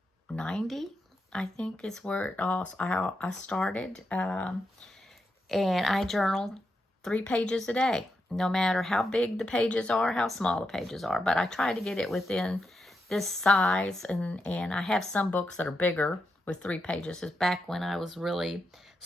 I think is where I started. And I journal 3 pages a day, no matter how big the pages are, how small the pages are. But I try to get it within this size, and I have some books that are bigger with 3 pages. It's back when I was really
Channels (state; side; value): normal; both; correlation 0.85